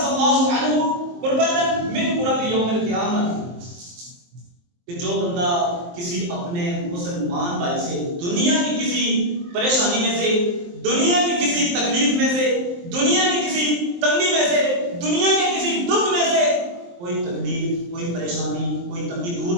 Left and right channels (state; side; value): late; left; 23 ms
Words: اللہ عنہ قربۃ من قرب یوم القیامت، کہ جو بندہ کسی اپنے مسلمان بھائی سے دنیا کی کسی پریشانی میں سے، دنیا کی کسی تکلیف میں سے، دنیا کی کسی تنگی میں سے، دنیا کے کسی دکھ میں سے کوئی تکلیف، کوئی پریشانی، کوئی تنگی دور